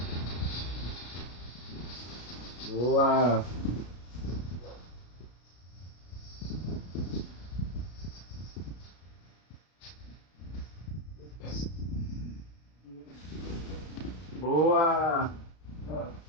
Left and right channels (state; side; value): late; right; 33 ms